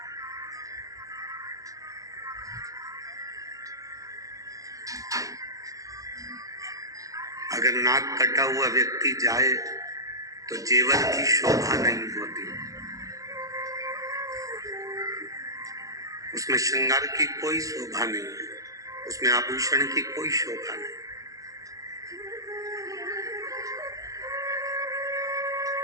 अगर नाक कटा हुआ व्यक्ति जाए तो जेवर की शोभा नहीं होती, उसमें श्रृंगार की कोई शोभा नहीं है, उसमें आभूषण की कोई शोभा नहीं।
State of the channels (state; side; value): late; left; 0.17 ms